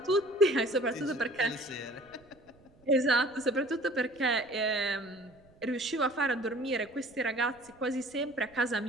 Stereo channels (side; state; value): right; noise; rumble, 29 dB below the sound